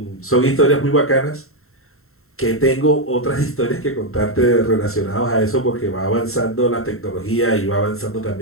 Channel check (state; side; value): late; right; 0.62 ms